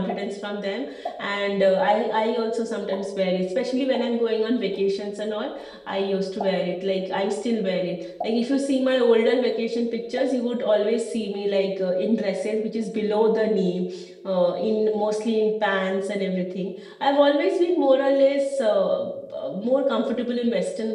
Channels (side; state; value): both; identical; correlation 1.00